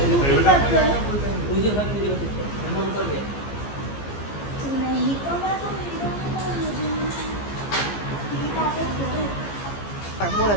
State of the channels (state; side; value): late; right; 15 ms